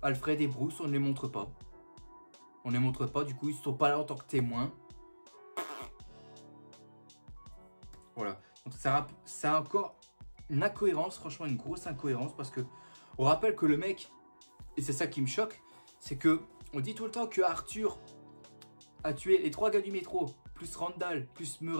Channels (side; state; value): both; inverted; correlation -1.00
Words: Alfred et Bruce, on ne les montre pas. On ne les montre pas. Du coup, ils ne sont pas là en tant que témoins. Voilà. Donc, c'est encore une incohérence. Franchement, une grosse incohérence. Parce que on rappelle que le mec, et c'est ça qui me choque, c'est que on dit tout le temps que Arthur a tué les 3 gars du métro, plus Randall, plus